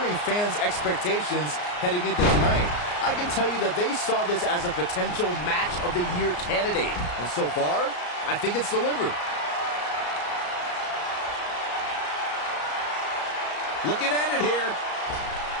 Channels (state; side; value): late; right; 34 ms